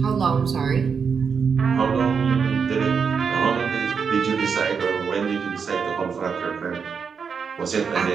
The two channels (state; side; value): quieter; left; 6.1 dB